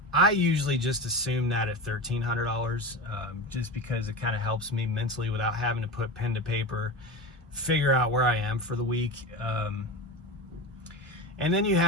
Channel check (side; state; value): both; normal; correlation 0.25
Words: I usually just assume that at $1,300, just because it kind of helps me mentally without having to put pen to paper, figure out where I am for the week. And then you